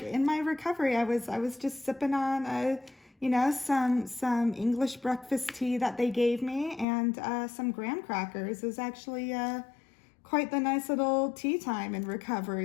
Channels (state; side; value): drops out; right; at 6.9 s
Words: in my recovery, I was just sipping on some English breakfast tea that they gave me, and some graham crackers. It was actually quite the nice little tea time in